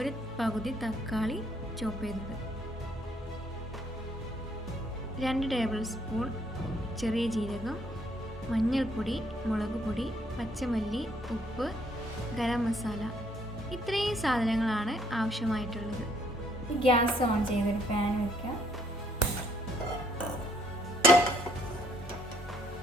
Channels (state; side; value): normal; both; correlation 0.67